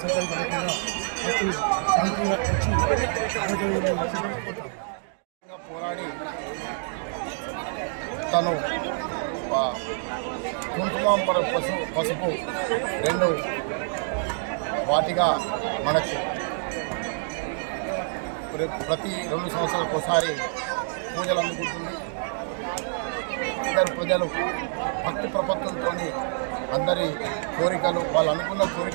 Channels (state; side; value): silent; left; digital silence